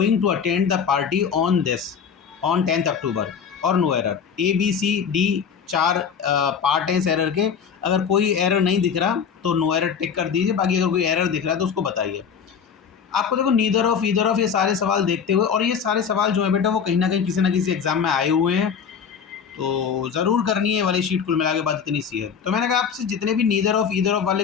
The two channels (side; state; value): right; quieter; 6.9 dB